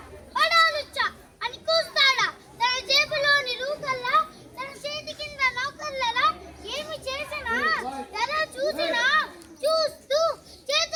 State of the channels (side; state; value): both; identical; correlation 1.00